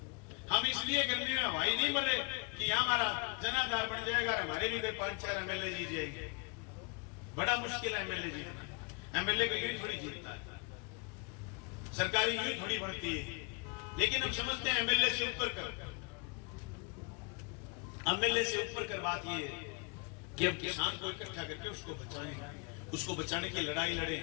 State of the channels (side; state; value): right; quieter; 31.9 dB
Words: हम इसलिए गर्मी में हवाई नहीं मर रहे कि यहाँ हमारा जनाधार बन जाएगा, हमारे भी 5-4 एमएलए जीत जाएंगे। बड़ा मुश्किल है एमएलए जीतना, एमएलए का यही थोड़ी जीतता है, सरकारी यही थोड़ी बढ़ती है। लेकिन हम समझते हैं एमएलए से ऊपर कर, एमएलए से ऊपर कर बात ये है कि हम किसान को इकट्ठा करके उसको बचाएं, उसको बचाने की लड़ाई लड़े।